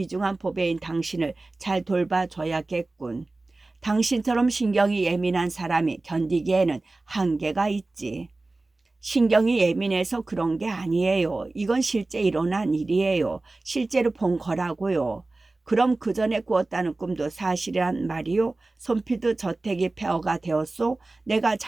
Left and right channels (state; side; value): quieter; left; 3.2 dB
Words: 보배인 당신을 잘 돌봐줘야겠군. 당신처럼 신경이 예민한 사람이 견디기에는 한계가 있지. 신경이 예민해서 그런 게 아니에요. 이건 실제 일어난 일이에요. 실제로 본 거라고요. 그럼 그 전에 꾸었다는 꿈도 사실이란 말이요? 손피드 저택이 폐허가 되었소? 내가